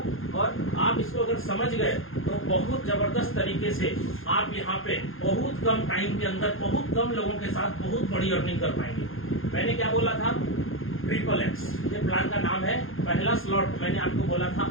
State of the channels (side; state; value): right; late; 0.60 ms